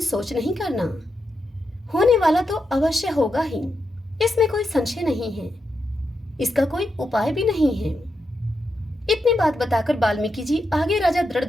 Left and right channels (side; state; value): both; normal; correlation 0.85